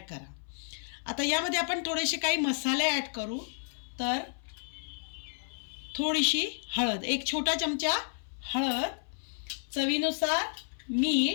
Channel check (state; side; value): silent; right; 57 dB below the other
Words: करा। आता यामध्ये आपण थोडेसे काही मसाले ॲड करू। तर थोडीशी हळद, एक छोटा चमचा हळद, चवीनुसार